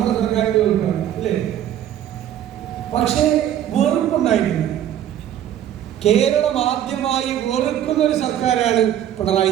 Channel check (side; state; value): left; quieter; 11.0 dB